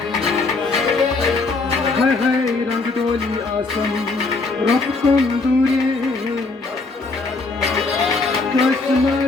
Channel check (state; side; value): quieter; right; 3.7 dB